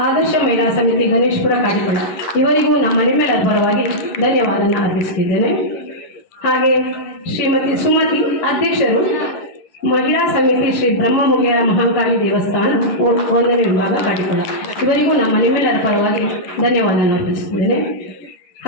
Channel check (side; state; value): right; late; 11 ms